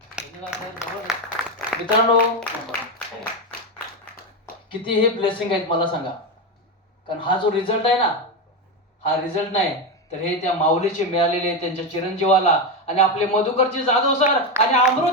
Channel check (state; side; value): normal; both; correlation 0.12